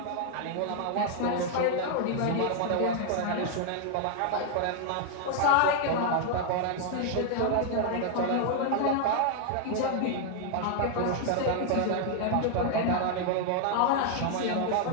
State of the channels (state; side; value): different; both; correlation 0.00